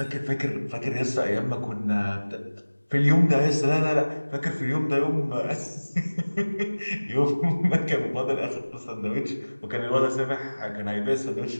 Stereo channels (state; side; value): inverted; both; correlation -1.00